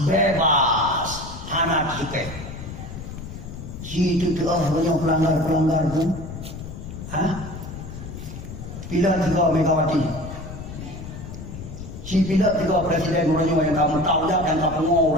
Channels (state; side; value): noise; left; rumble, 10 dB below the sound